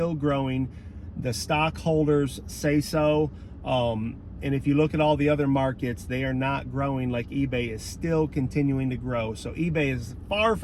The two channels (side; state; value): both; identical; correlation 1.00